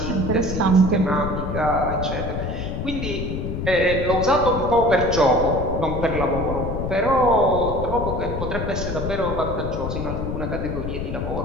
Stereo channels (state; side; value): noise; left; rumble, 4 dB below the sound